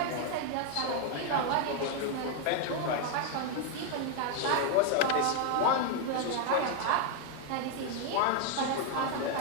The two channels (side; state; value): both; different; correlation 0.00